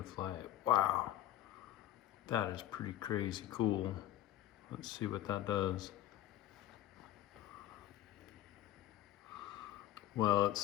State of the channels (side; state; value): right; quieter; 13.3 dB